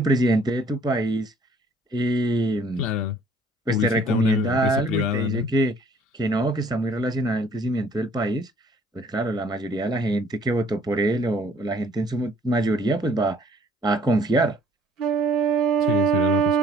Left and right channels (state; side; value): normal; both; correlation 0.58